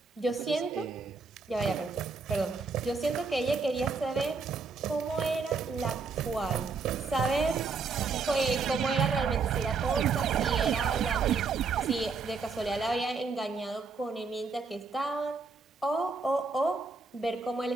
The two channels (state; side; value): quieter; left; 4.5 dB